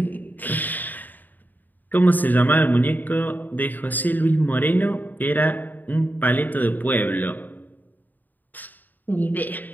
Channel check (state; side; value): late; right; 0.086 ms